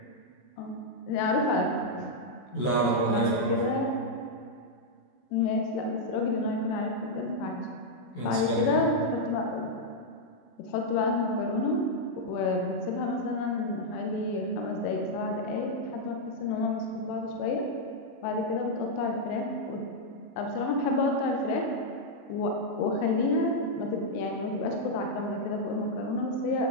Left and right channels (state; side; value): late; right; 16 ms